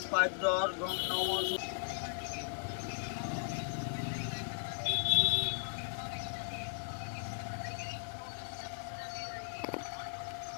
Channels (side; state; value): right; silent; digital silence